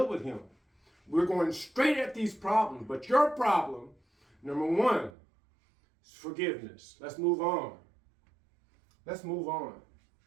with him. We're going straight at these problems. But your problem, number one, is forgiveness. Let's move on. Let's move on.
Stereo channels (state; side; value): drops out; left; at 5.1 s